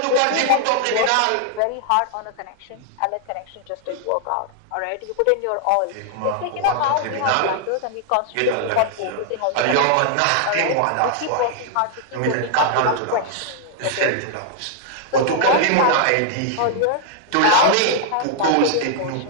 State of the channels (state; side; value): different; both; correlation 0.00